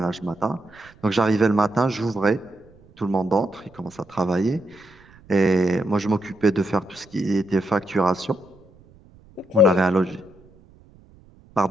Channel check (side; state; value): right; noise; rumble, 26 dB below the sound